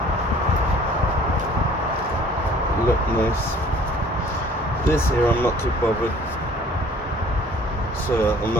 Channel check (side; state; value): both; normal; correlation 0.53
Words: Look nice. This here I'm not too bothered, so I'm